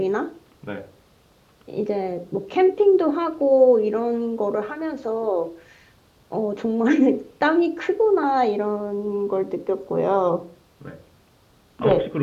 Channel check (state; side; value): identical; both; correlation 1.00